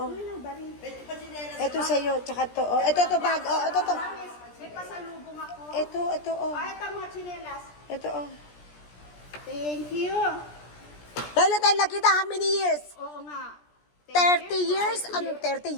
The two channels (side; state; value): right; late; 17 ms